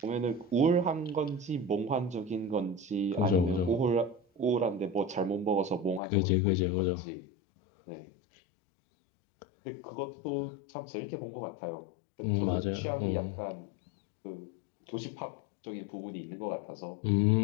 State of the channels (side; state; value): right; drops out; at 6.0 s